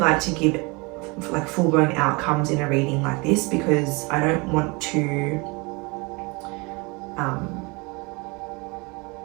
to give like full-blown outcomes in a reading like this, because I don't want to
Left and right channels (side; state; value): left; quieter; 27.6 dB